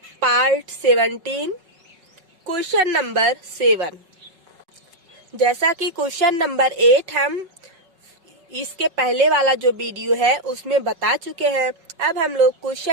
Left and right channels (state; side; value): late; left; 5.4 ms